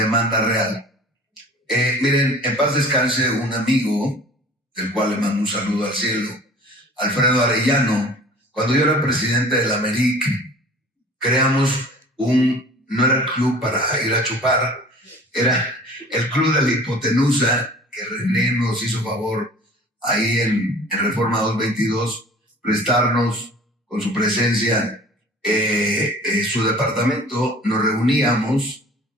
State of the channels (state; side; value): normal; both; correlation 0.45